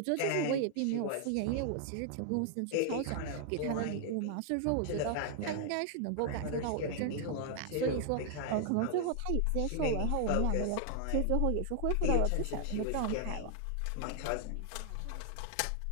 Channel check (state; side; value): different; both; correlation 0.00